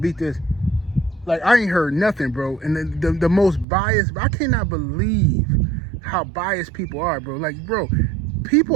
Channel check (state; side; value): drops out; left; at 3.7 s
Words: beat this. Like, I ain't heard nothing, bro. And the most biased, I cannot believe how biased people are, bro. Like, bro,